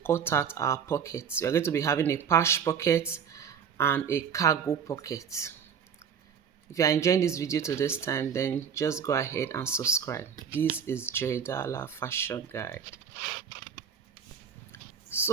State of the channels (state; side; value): quieter; left; 7.3 dB